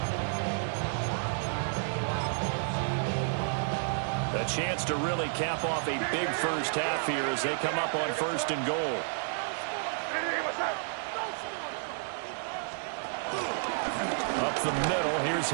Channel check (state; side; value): silent; left; 57 dB below the other